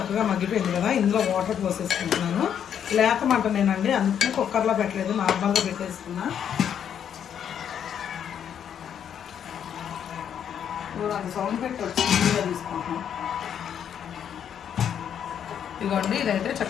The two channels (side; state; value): right; quieter; 8.8 dB